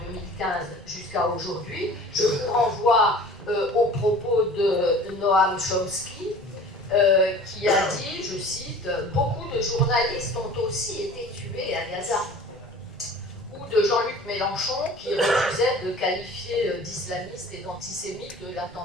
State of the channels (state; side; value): normal; both; correlation 0.43